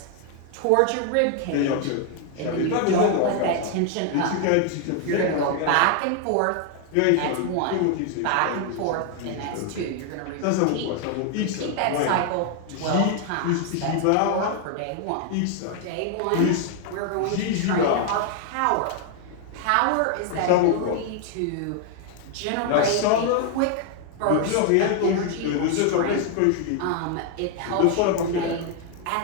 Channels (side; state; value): both; different; correlation 0.00